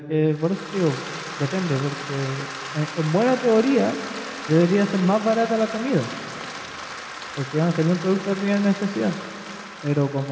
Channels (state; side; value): identical; both; correlation 1.00